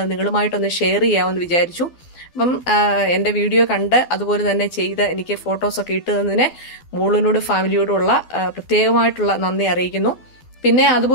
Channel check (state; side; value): late; right; 12 ms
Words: നിങ്ങളുമായിട്ടൊന്ന് ഷെയർ ചെയ്യാമെന്ന് വിചാരിച്ചു. അപ്പം എൻ്റെ വീഡിയോ കണ്ട് അതുപോലെ തന്നെ ചെയ്ത് എനിക്ക് ഫോട്ടോസൊക്കെ ഇട്ട് തന്നതിന് മോളിനോട് ഫാമിലിയോടുള്ള പ്രത്യേകമായിട്ടുള്ള നന്ദി അറിയിക്കുന്നു. പിന്നെ